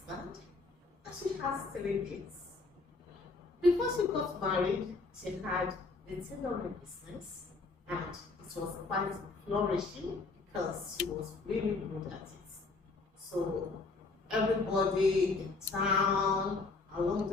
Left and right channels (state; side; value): quieter; right; 3.7 dB